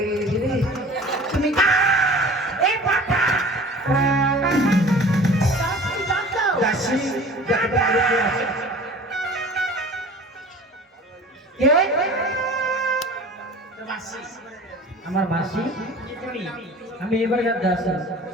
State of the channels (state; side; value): normal; both; correlation 0.43